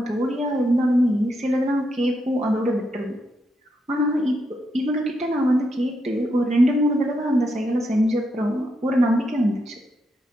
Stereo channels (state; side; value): normal; both; correlation 0.81